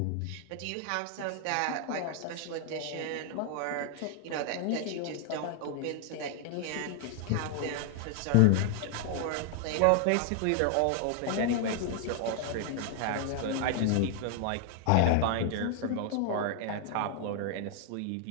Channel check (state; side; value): different; both; correlation 0.00